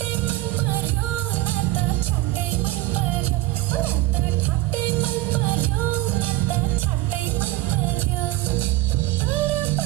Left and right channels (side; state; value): left; quieter; 16.5 dB